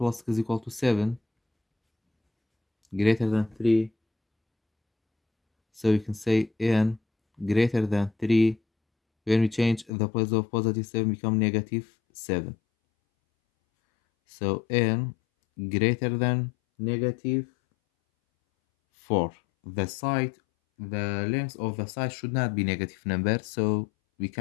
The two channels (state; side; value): drops out; right; at 9.9 s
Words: 6 is equal to 7, greater than 3. So you can say n greater than 3. When we change the place of positive 7 become negative 7. So n greater than negative 4. The length of the side should not be negative number, so we